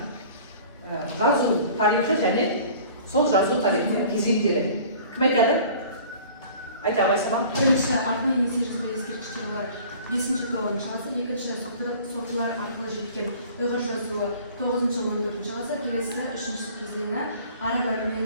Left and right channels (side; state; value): both; inverted; correlation -0.47